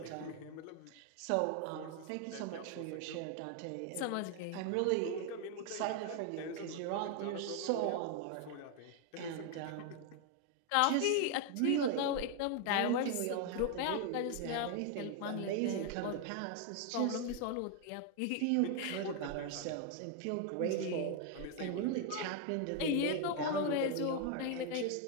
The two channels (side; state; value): both; different; correlation 0.01